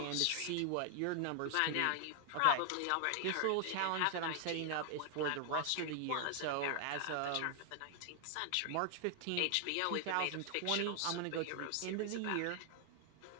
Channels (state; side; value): different; both; correlation 0.00